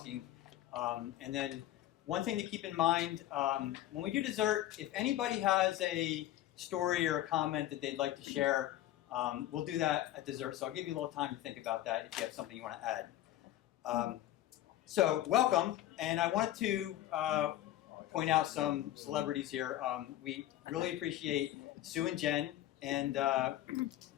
And then one thing to keep in mind, when we do dessert, if anybody has a story or a comment that they'd like to share, we'll do that at dessert. So I'll give you a little time to think about that if you have something you want to add. So welcome, and I wanted to point out some celebrities here. We really appreciate Sue and Jen, and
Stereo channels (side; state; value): right; quieter; 13.8 dB